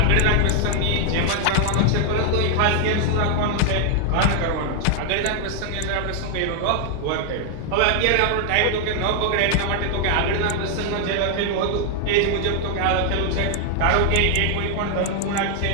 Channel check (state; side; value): different; both; correlation 0.00